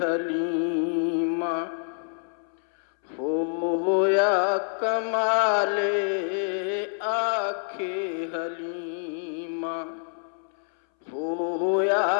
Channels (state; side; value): silent; right; 60 dB below the other